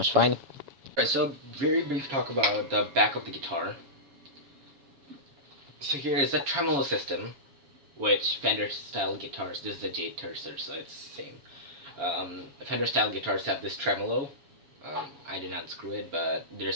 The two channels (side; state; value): left; late; 7.2 ms